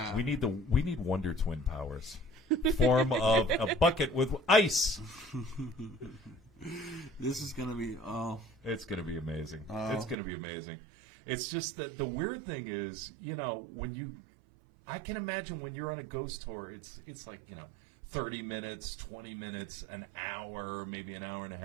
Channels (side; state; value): left; drops out; at 10.2 s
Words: We need Wonder Twin powers. Form of a bucket with ice. This is going to be, It's going to be amazing. It's going to be amazing. It's just that the weird thing is, I can imagine when you're on a ghost tour, it's like, 30 minutes, 20 minutes, an hour, maybe an hour and a